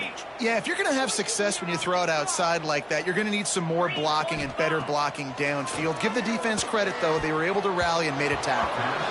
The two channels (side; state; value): both; identical; correlation 1.00